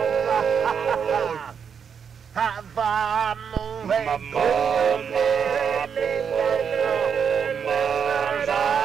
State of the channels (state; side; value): quieter; left; 7.0 dB